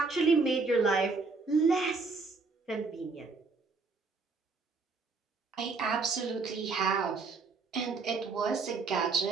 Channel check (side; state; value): left; quieter; 4.3 dB